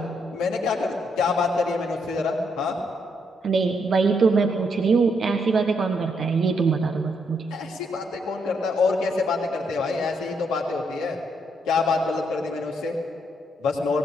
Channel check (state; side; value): normal; both; correlation 0.76